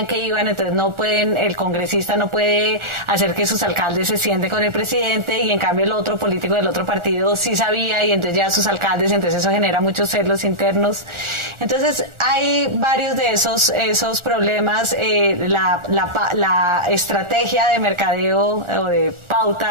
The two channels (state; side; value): late; left; 1.4 ms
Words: que iban, entonces no pueden, el congresista no puede hacer que sus alcaldes se sienten con el presidente y en cambio el otro político del otro partido sí sabía y entonces ya sus alcaldes, entonces eso genera muchos celos internos. Entonces hay varios de esos problemas. La estrategia de mercadeo o de